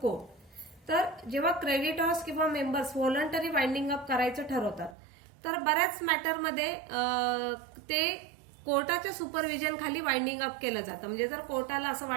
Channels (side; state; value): left; drops out; at 5.0 s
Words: court. तर जेव्हा क्रेडिटर्स किंवा मेंबर्स व्हॉलंटरी वाइंडिंग अप करायचं ठरवतात तर बऱ्याच मॅटरमध्ये ते कोर्टाच्या सुपरविजन खाली वाइंडिंग अप केलं जातं. म्हणजे जर कोर्टाला असं